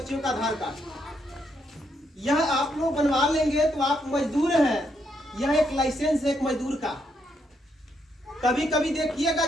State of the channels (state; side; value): normal; both; correlation 0.77